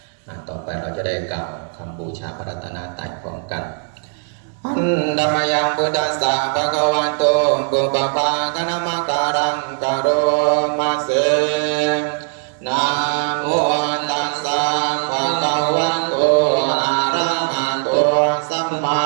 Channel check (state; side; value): silent; left; 62 dB below the other